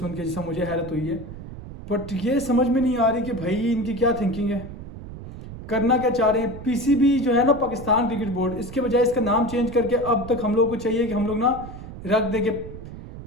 के, जैसा मुझे हैरत हुई है। बट ये समझ में नहीं आ रही कि भाई इनकी क्या थिंकिंग है, करना क्या चाह रहे हैं। पीसीबी जो है ना, पाकिस्तान क्रिकेट बोर्ड, इसके बजाय इसका नाम चेंज करके अब तक हम लोग को चाहिए कि हम लोग ना रख देंगे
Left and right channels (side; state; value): right; noise; rumble, 12 dB below the sound